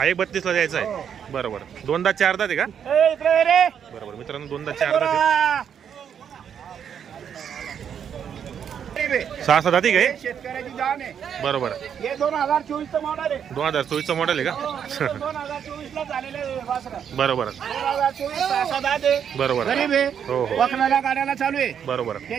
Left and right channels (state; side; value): quieter; left; 8.2 dB